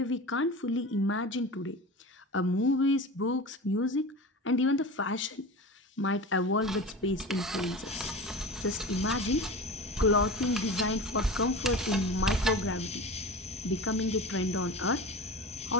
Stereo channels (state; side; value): normal; both; correlation 0.31